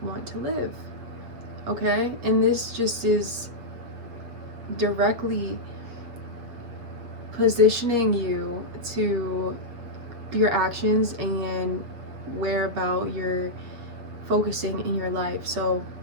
want to live. Okay, and this just is directly positioning you to your actions and where about you're focusing in your life. So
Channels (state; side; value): late; left; 7.9 ms